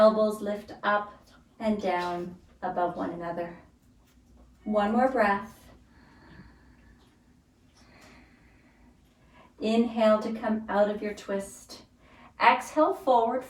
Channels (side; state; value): both; identical; correlation 1.00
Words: lift up and down above one another. 1 more breath. Inhale to come out of your twist. Exhale, forward